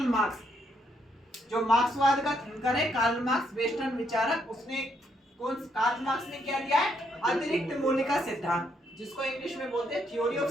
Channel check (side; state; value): both; normal; correlation 0.74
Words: Marx. जो मार्क्सवाद का थिंकर है कार्ल मार्क्स, वेस्टर्न विचारक, उसने कार्ल मार्क्स ने क्या दिया है? अतिरिक्त मूल्य का सिद्धांत, जिसको इंग्लिश में बोलते हैं थ्योरी ऑफ